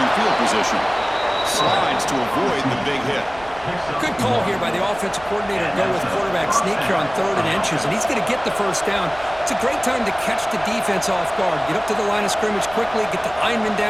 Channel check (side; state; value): right; noise; rumble, 21 dB below the sound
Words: field position. Slides to avoid the big hit. Good call here by the offensive coordinator to go with quarterback sneak here on 3rd and inches, and he's going to get the first down. It's a great time to catch the defense off guard. Get up to the line of scrimmage quickly, get the lineman